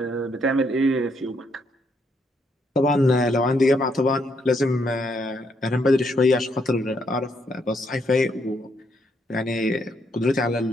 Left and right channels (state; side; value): normal; both; correlation 0.74